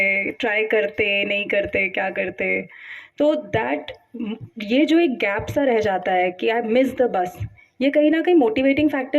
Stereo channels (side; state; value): both; identical; correlation 1.00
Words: ट्राई करते नहीं करते क्या करते. तो दैट ये जो एक गैप सा रह जाता है कि आई मिस द बस, ये कहीं ना कहीं मोटिवेटिंग